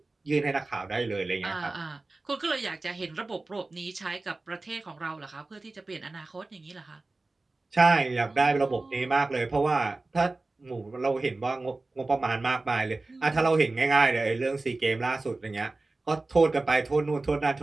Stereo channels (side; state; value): left; quieter; 3.3 dB